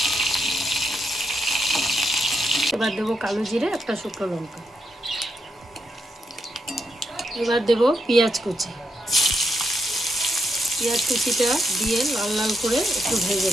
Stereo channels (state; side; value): normal; both; correlation 0.81